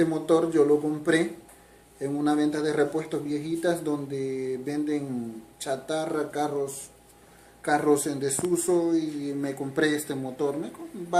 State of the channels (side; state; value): both; identical; correlation 1.00